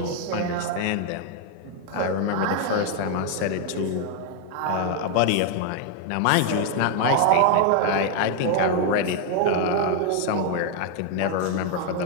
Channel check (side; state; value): both; different; correlation 0.01